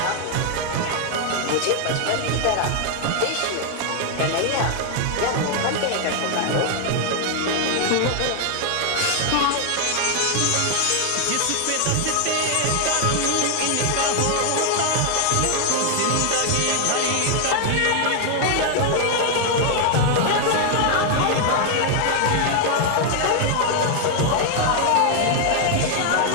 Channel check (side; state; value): both; different; correlation 0.00